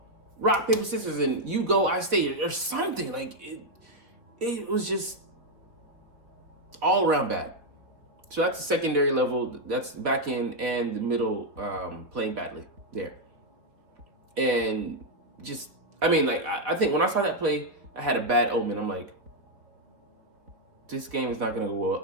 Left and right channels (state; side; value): late; left; 3.9 ms